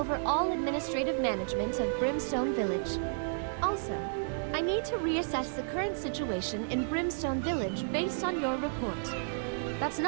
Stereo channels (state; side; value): silent; left; digital silence